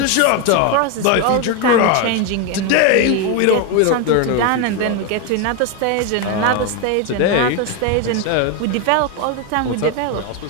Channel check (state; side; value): different; both; correlation 0.02